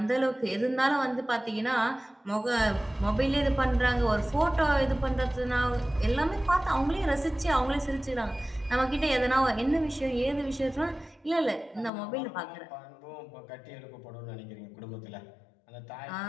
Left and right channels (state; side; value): drops out; right; at 11.9 s